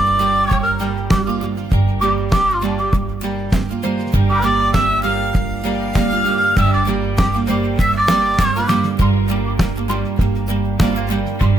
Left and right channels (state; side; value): normal; both; correlation 0.82